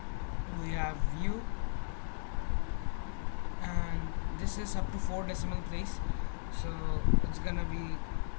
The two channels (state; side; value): silent; right; digital silence